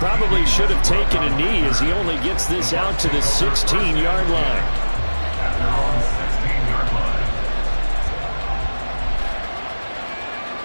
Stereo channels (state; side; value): inverted; both; correlation -1.00